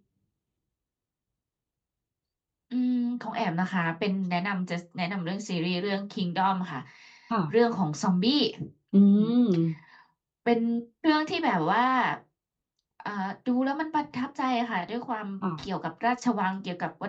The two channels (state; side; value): identical; both; correlation 1.00